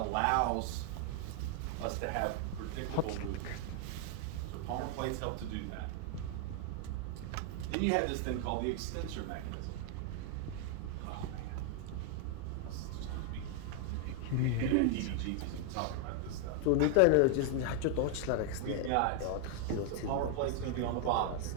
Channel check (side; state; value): both; different; correlation 0.00